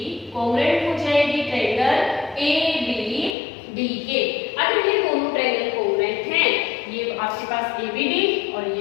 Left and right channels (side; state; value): right; drops out; at 3.4 s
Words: कोग्रेंट हो जाएगी ट्रायंगल ABD के। अगर ये दोनों ट्रायंगल कोग्रेंट हैं, ये आपके पास ABD और